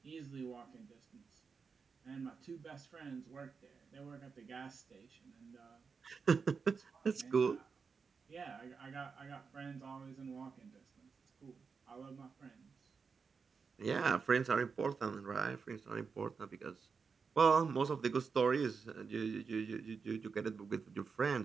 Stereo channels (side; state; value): left; quieter; 5.4 dB